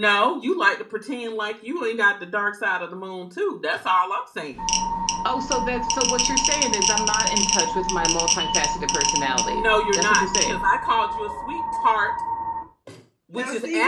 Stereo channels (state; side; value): identical; both; correlation 1.00